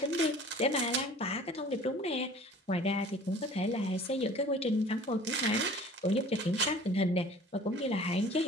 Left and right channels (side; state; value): both; normal; correlation 0.47